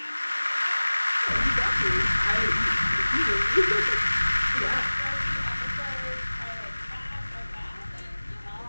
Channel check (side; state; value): both; inverted; correlation -1.00